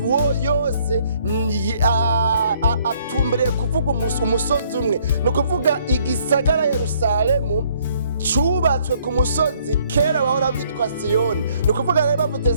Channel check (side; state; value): both; inverted; correlation -0.65